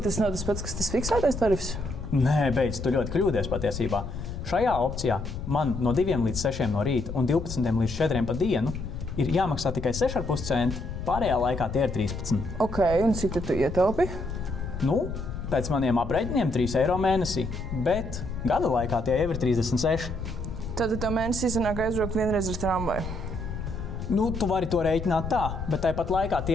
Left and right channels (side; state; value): left; noise; rumble, 7 dB below the sound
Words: tas nav tas pats, kas tas fiksētais tarifs? Nē, beidz, tu ļoti kļūdies patiesībā. Šajā opcijā man no 2 līdz 6 no rīta un 12 līdz 4 pa dienu ir jāmaksā tikai 6,5 centi, pārējā laikā tie ir 13. Ok, un cik tu ietaupi? Nu, pēc maniem aprēķiniem 3 eiro mēnesī, bet gada laikā tie jau ir 36. Tad tev mēnesī sanāk aizbraukt vienreiz ar tramvaju. Nu, tu vari to rēķināt tā, bet tāpat laikā tie